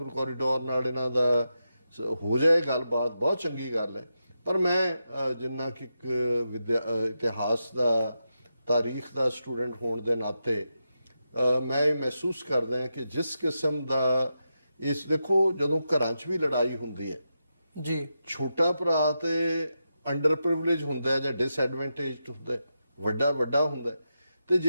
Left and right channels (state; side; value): inverted; both; correlation -0.87